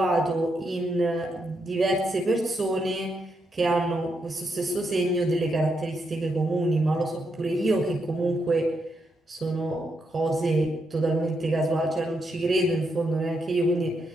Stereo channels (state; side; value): normal; both; correlation 0.81